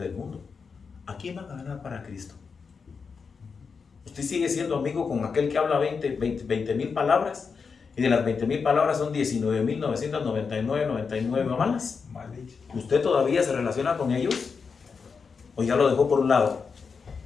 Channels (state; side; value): quieter; right; 5.4 dB